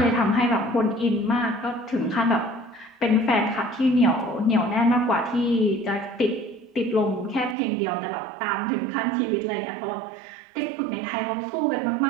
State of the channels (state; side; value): drops out; left; at 7.6 s